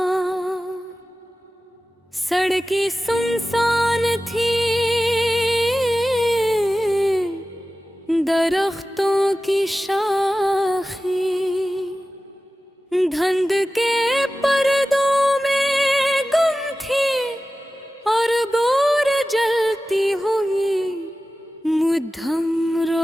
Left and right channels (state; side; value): normal; both; correlation 0.95